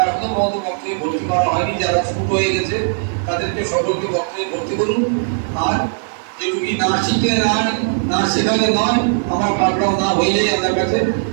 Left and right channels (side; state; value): left; silent; 64 dB below the other